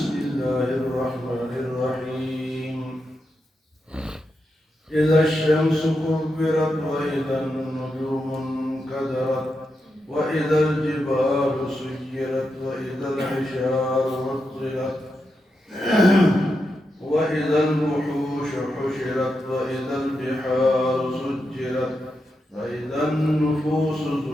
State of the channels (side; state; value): both; normal; correlation 0.86